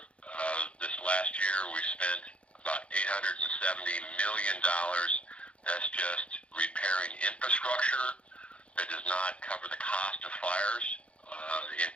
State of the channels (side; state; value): right; late; 0.061 ms